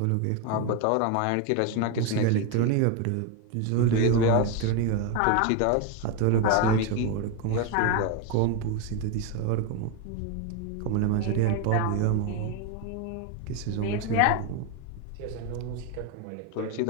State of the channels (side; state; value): both; different; correlation 0.01